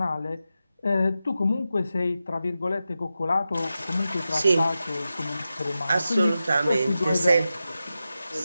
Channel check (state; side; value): inverted; both; correlation -0.92